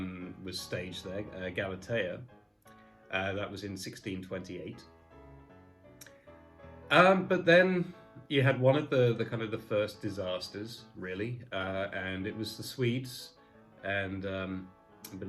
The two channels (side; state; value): both; identical; correlation 1.00